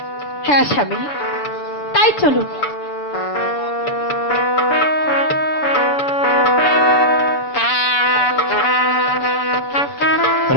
হ্যাঁ স্বামী, তাই চলুন।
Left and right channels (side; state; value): right; late; 6.9 ms